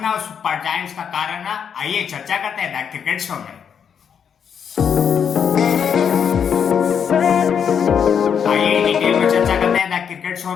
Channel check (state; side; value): quieter; right; 7.6 dB